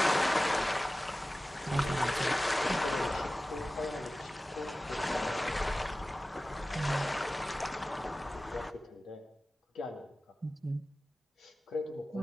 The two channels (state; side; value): normal; both; correlation 0.96